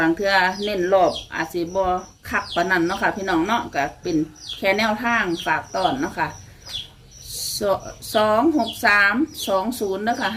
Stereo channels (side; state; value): both; identical; correlation 1.00